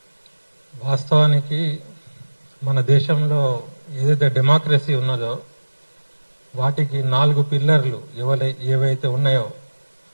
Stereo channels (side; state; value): both; inverted; correlation -1.00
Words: వాస్తవానికి మన దేశంలో ఏదైతే డెమోక్రసీ ఉన్నదో వాటికి 4 పిల్లర్లు ఏవైతే ఉన్నాయో,